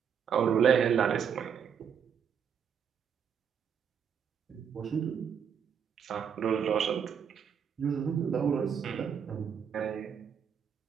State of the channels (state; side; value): quieter; left; 7.5 dB